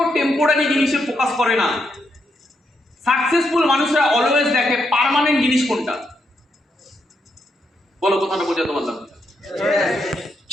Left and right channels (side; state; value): both; normal; correlation 0.80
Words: টেম্পোরারি জিনিসে ফোকাস করে না। সাকসেসফুল মানুষরা অলওয়েজ দেখে পার্মানেন্ট জিনিস কোনটা। বলো, কথাটা বোঝাতে পারলাম?